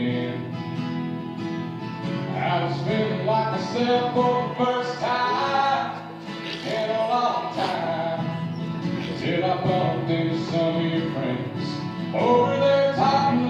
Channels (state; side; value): identical; both; correlation 1.00